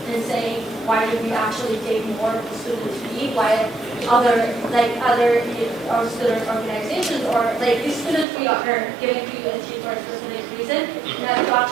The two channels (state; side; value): drops out; left; at 8.2 s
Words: in saying why did we actually take more of the student fee while other or student organizations or like the student fee are giving to USG for a specific reason, and that's to